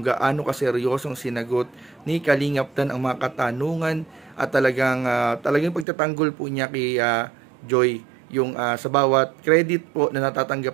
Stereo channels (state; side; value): drops out; left; at 5.9 s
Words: gaano kaseryosong sinagot ni Kalingap Dan ang mga katanungan at talagang pagtatanggol po niya kay Joy. Yung sa bawat credit po na